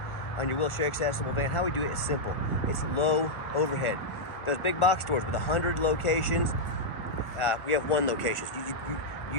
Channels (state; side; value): late; right; 1.4 ms